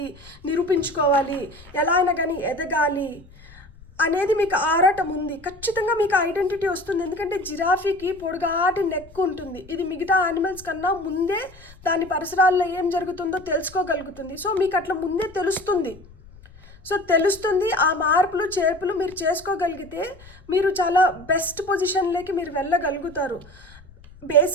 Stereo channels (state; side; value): noise; left; rumble, 22 dB below the sound